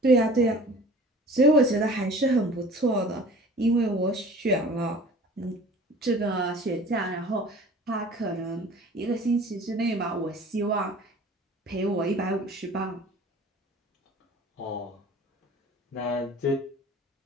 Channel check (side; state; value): both; normal; correlation 0.45